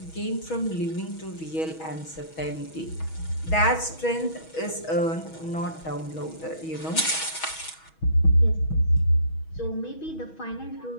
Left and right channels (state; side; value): late; right; 6.2 ms